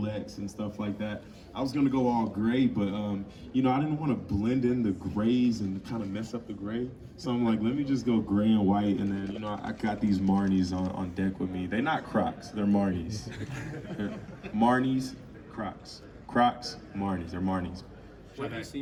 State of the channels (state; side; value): identical; both; correlation 1.00